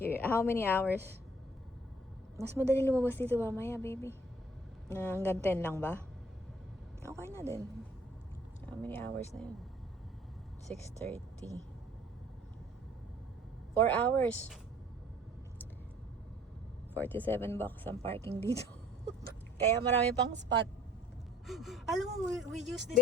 How many hours? Mas madali lumabas dito mamaya, baby. Hanggang 10 lang ba? Okay na din. How many hours na yun? 6:30. 4 hours. $47 ang parking dito. Kaya marami pang spot. Alam mo, we used this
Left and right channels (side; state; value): both; normal; correlation 0.54